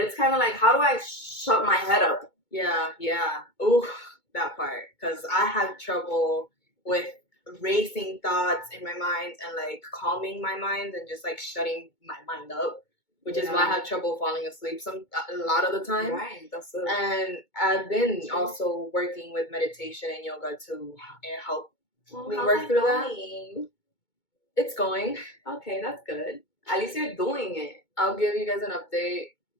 kind of like, how do I shut my head up? Yeah. Ooh, that part. Because I have trouble with racing thoughts in my mind and like calming my mind and just like shutting my mind up, which is why I have trouble falling asleep a lot of the time. Right, that's it. And I've been also working with meditation and yoga to help me work through that. It's going. Okay, that's good. At least you're doing it. I'll give you guys an update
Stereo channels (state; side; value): late; right; 2.2 ms